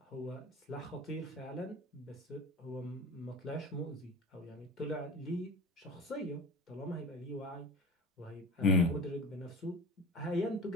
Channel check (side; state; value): both; normal; correlation 0.33